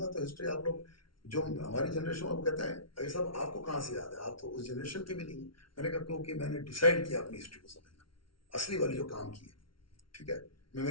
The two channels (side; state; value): right; late; 0.74 ms